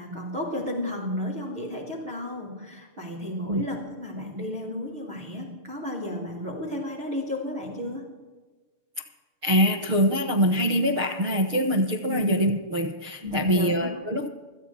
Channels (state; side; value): late; left; 6.5 ms